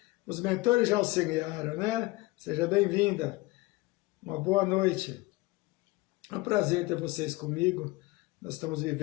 Os mentores já auxiliaram, né? Seja bem-vinda. Uma boa noite. É um prazer ter vocês comigo. Nós estamos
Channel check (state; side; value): quieter; right; 21.0 dB